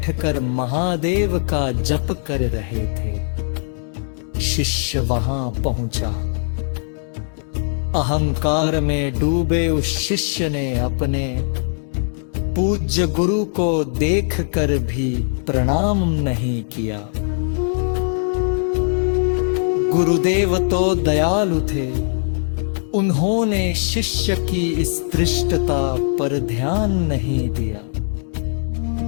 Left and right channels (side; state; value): right; silent; digital silence